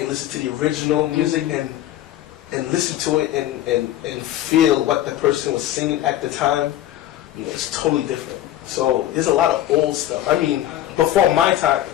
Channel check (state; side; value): quieter; right; 13.0 dB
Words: listen to the original music and listen to it and feel what the person was singing at the time, you know, it's totally different. So there's a lot of old stuff. I mean, before my time,